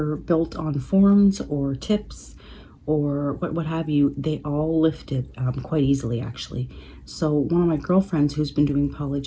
built on forms or tips or what have you, they all lifted quite easily actually. So one of my girlfriends who's been doing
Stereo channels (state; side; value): identical; both; correlation 1.00